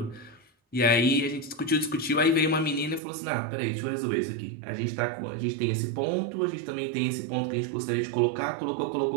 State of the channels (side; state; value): left; drops out; at 3.0 s